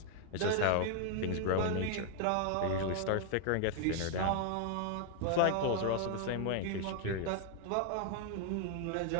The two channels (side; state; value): both; different; correlation 0.00